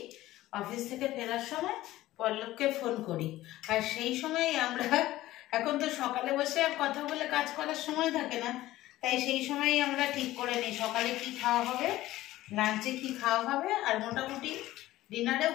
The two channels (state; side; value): quieter; right; 15.9 dB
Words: অফিস থেকে ফেরার সময় পল্লবকে ফোন করি, আর সেই সময় আমরা, এখন তো সকালে বসে আর কথা বলে কাজ করার সময় থাকে না, তাই সেই সময়ই আমরা ঠিক করে নিই সকালে কি খাওয়া হবে, লাঞ্চে কি খাওয়া হবে, আর মোটামুটি ডিনারেও